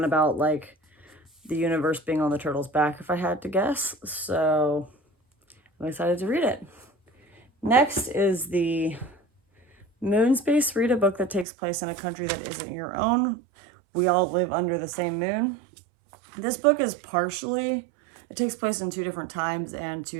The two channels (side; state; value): left; drops out; at 11.5 s